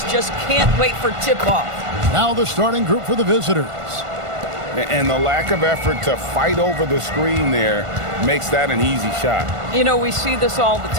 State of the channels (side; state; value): left; late; 1.5 ms